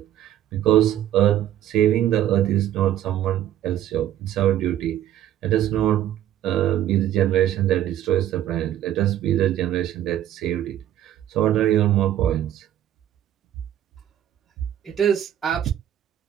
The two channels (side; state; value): left; quieter; 11.8 dB